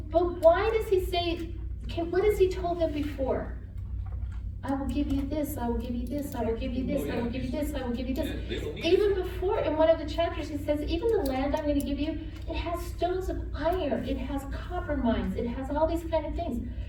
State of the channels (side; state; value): both; identical; correlation 1.00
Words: why does he say, what has he told them before? I will give you this, I will give you this, I will give you this, I will give you this, I will give you this. Yeah, they don't need Even before, in one of the chapters, he says, even the land I'm going to give you, it has stones of iron, it has copper mines, it has all these kind of things.